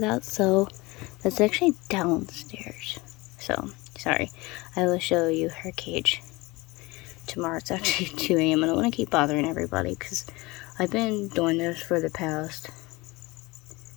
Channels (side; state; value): right; quieter; 23.0 dB